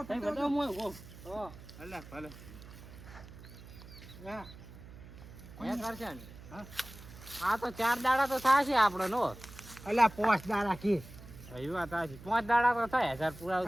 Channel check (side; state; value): right; noise; hum, 17 dB below the sound